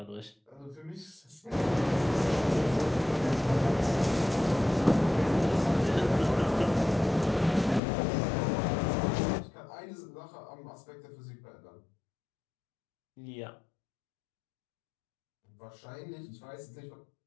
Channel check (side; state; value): right; drops out; at 7.8 s